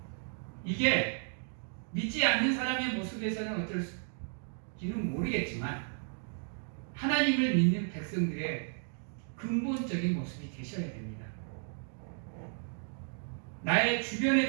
이게 믿지 않는 사람의 모습에서는 어떨지는 모르겠지만 하나님을 믿는 백성들의 근본적인 모습이 되셔야 됩니다. 나의 주변에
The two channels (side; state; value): left; silent; 55 dB below the other